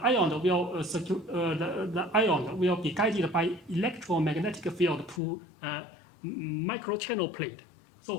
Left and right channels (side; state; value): right; drops out; at 5.2 s